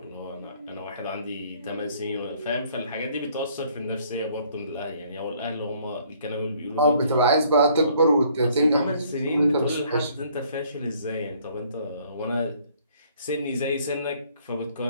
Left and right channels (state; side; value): inverted; both; correlation -0.61